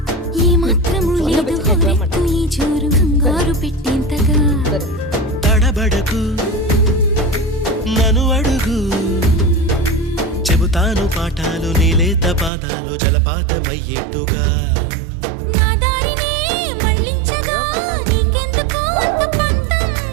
ఏ మాత్రము లేదు హోరెత్తు ఈ జోరు కంగారు పెట్టేంతగా తడబడకు నన్ను అడుగు చెబుతాను పాఠాలు నీలేత పాదాలు జలపాతమయ్యేట్టుగా నా దారినే మళ్ళించగా నీకెందుకు అంత పంతం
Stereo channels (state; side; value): drops out; left; at 12.5 s